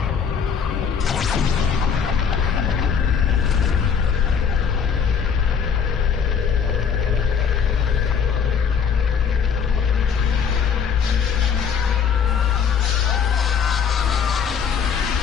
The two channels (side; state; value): right; quieter; 6.9 dB